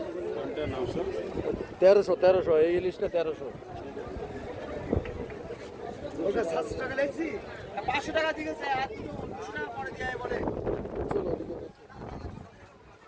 1300 এই ইলিশটা 1300। 700 টাকা লেগেছি, 500 টাকা দিয়েছে আর 200 টাকা পরে দিয়ে বলে চলো ওদিকে দেখি,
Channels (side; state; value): both; identical; correlation 1.00